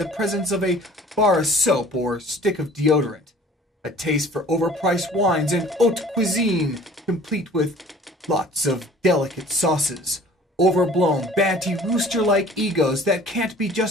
presence of a bar of soap or stick of deodorant, a taste for overpriced wines and haute cuisine, complete with lots of delicate sauces, overblown, banty, rooster-like egos that can't be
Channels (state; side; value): normal; both; correlation 0.49